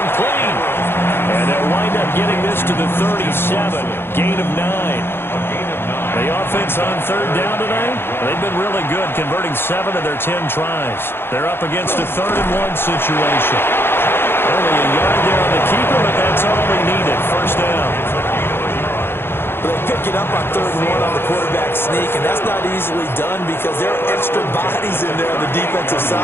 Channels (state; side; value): late; right; 0.11 ms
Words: And they'll wind up getting this to the 37. Gain of 9. The offense on third down tonight, they've been really good, converting 7 of their 10 tries. They're up against a 3rd-and-1 situation. Only a yard there on the keeper, but that's all they needed. First down. They pick it up on 3rd and 1 on the quarterback sneak, and that's not easily done because there are extra bodies in there on the defensive